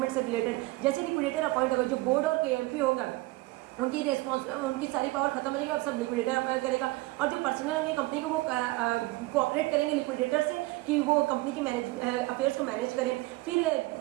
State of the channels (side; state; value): left; quieter; 21.3 dB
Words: से रिलेटेड। जैसे लिक्विडेटर अपॉइंट होगा, जो बोर्ड और केएमपी होगा उनकी उनकी सारी पावर खत्म हो जाएगी, अब सब लिक्विडेटर अप्लाई करेगा। और जो पर्सनल होंगे कंपनी को वो कोऑपरेट करेंगे लिक्विडेटर से कि वो कंपनी की अफेयर्स को मैनेज करें। फिर